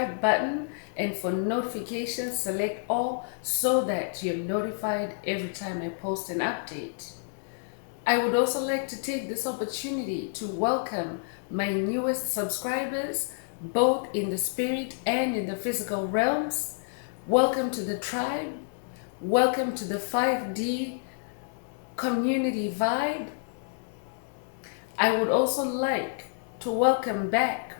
button, and for notifications, select all so that you're notified every time I post an update. I would also like to take this opportunity to welcome my newest subscribers, both in the spirit and in the physical realms. Welcome to the tribe. Welcome to the 5D community vibe. I would also like to welcome back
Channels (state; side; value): silent; right; digital silence